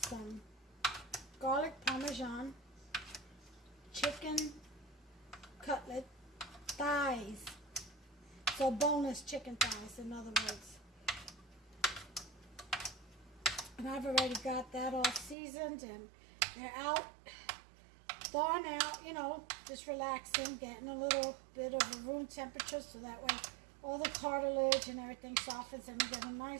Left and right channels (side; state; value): left; drops out; at 15.4 s